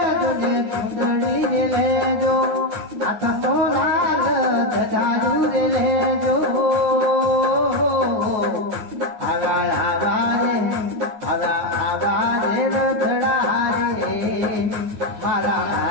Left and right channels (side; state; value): left; late; 9.6 ms